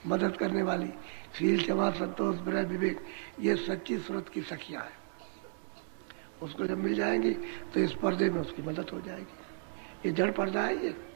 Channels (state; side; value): silent; left; 55 dB below the other